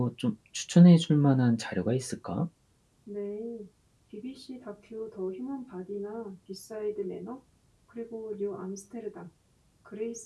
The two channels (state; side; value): identical; both; correlation 1.00